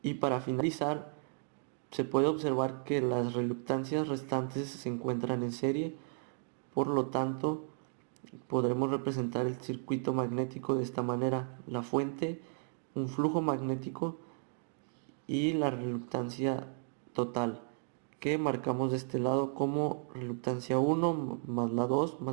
Y para finalizar, se puede observar que las reluctancias restantes se encuentran en serie. Por lo tanto, podremos representar el circuito magnético de esta manera: la fuente, un flujo magnético y la reluctancia total, que marcamos de este lado como reluctancia 1 más la 2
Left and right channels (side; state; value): left; silent; 55 dB below the other